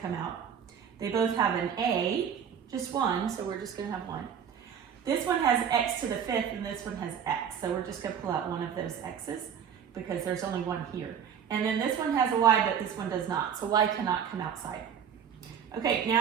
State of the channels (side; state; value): left; quieter; 7.9 dB